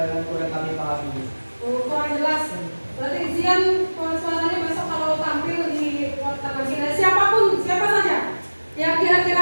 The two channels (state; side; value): inverted; both; correlation -1.00